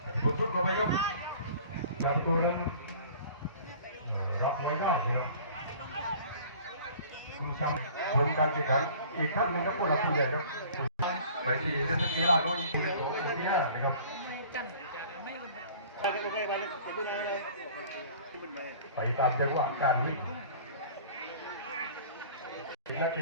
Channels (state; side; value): inverted; both; correlation -0.46